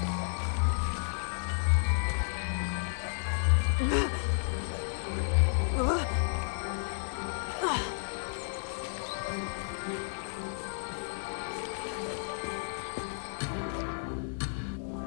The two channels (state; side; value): silent; right; digital silence